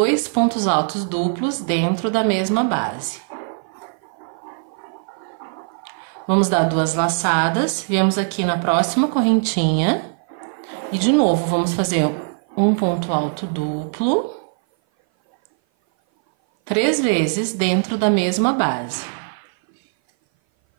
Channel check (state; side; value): silent; left; 58 dB below the other